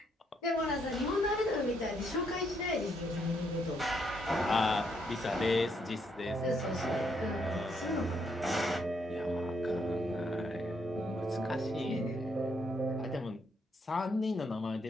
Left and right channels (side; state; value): both; normal; correlation 0.74